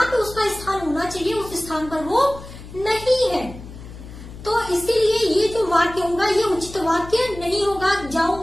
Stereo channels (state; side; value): noise; left; hum, 15 dB below the sound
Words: पे उसका स्थान होना चाहिए उस स्थान पर वो नहीं है। तो इसीलिए ये जो वाक्य होगा ये उचित वाक्य नहीं होगा।